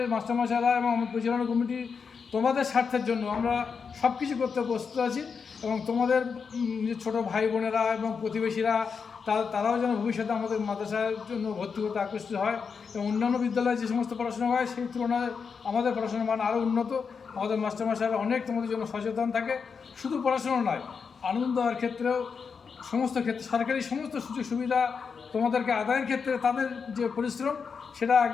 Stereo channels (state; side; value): quieter; right; 5.8 dB